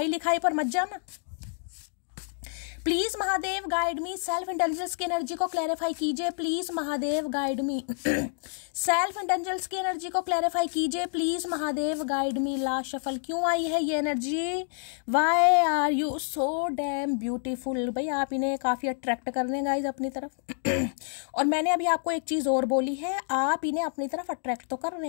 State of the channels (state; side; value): silent; right; 59 dB below the other